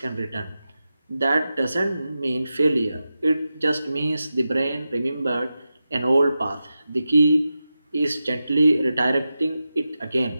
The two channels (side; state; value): both; inverted; correlation -0.91